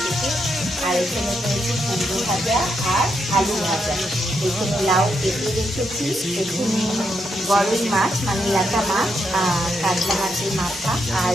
খেতে। আর এখানে করেছি কুমড়ো ভাজা আর আলু ভাজা। এখানে লাউ কেটে রেখেছি, এখানে গরই মাছ মানে ল্যাটা মাছ আর কাতলা মাছের মাথা আর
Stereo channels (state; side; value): normal; both; correlation 0.80